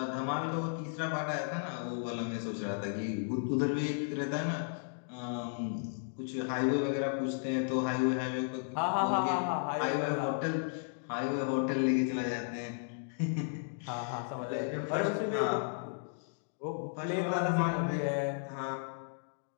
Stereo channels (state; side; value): silent; right; digital silence